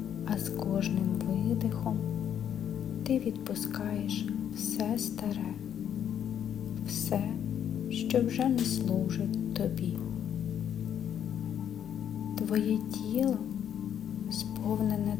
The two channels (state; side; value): quieter; right; 9.3 dB